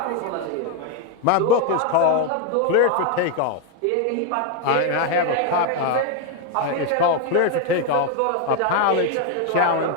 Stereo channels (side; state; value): both; different; correlation 0.01